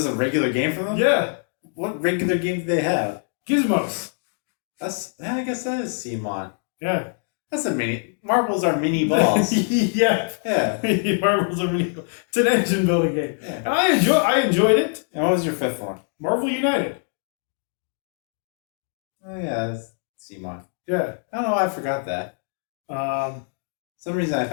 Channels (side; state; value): right; silent; 55 dB below the other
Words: a regular game for them? Yeah. What regular game do they have? Gizmos. I guess that is CMON. Yeah. That's a mini. Marbles are mini balls. Yeah. Yeah. Marbles are really cool. It's an engine building game. Yeah. And I enjoyed it. And what was your 5th one? Marvel United. Oh yeah, that's CMON. Yeah. I don't know why I forgot that. Some reason I